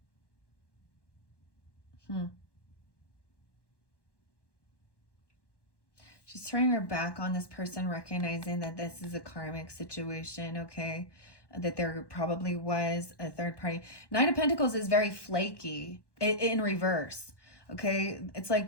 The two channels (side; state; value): right; late; 1.1 ms